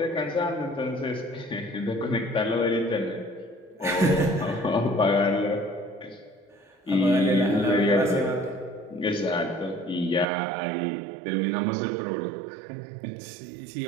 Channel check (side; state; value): left; drops out; at 10.2 s